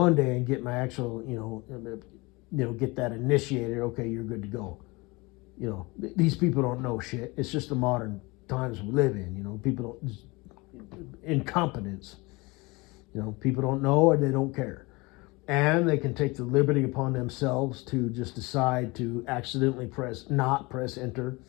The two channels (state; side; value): quieter; right; 24.7 dB